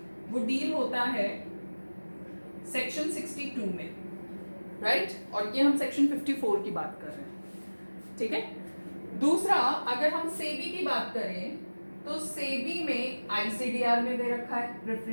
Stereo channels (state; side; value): inverted; both; correlation -1.00